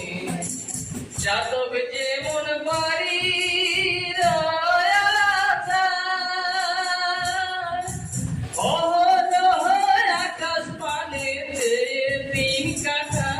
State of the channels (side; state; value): both; identical; correlation 1.00